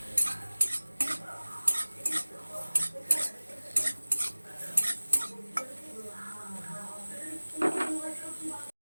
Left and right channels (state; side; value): inverted; both; correlation -1.00